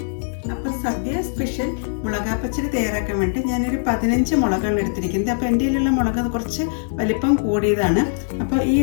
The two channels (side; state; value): right; silent; digital silence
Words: അപ്പോൾ സദ്യ സ്പെഷ്യൽ മുളകാ പച്ചടി തയ്യാറാക്കാൻ വേണ്ടി ഞാനൊരു 15 മുളകാണ് എടുത്തിരിക്കുന്നത്. അപ്പോൾ എൻ്റെ കയ്യിലുള്ള മുളക് കുറച്ച് വലിപ്പം കൂടിയതാണ്. അപ്പോൾ ഈ